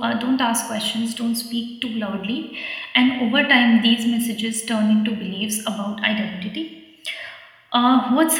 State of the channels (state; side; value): identical; both; correlation 1.00